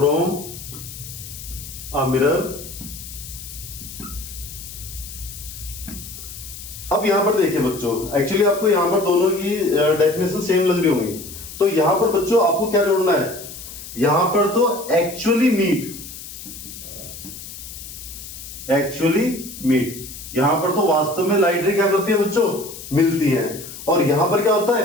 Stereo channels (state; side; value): noise; left; hiss, 13 dB below the sound